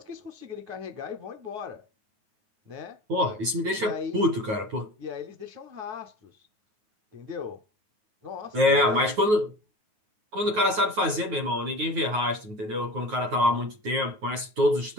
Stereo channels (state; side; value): late; left; 9.4 ms